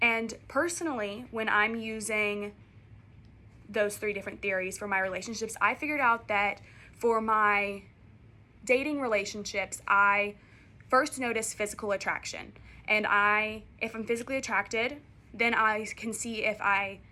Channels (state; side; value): identical; both; correlation 1.00